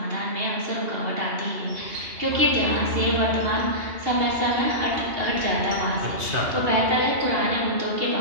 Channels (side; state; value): left; late; 2.8 ms